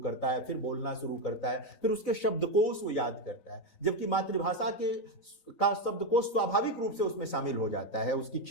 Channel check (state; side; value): late; right; 4.0 ms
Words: है, फिर बोलना शुरू करता है, फिर उसके शब्दकोश वो याद करता है। जबकि मातृभाषा का शब्दकोश स्वाभाविक रूप से उसमें शामिल हो जाता है, उसकी